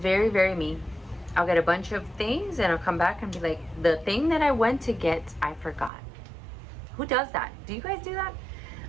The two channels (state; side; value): drops out; left; at 5.9 s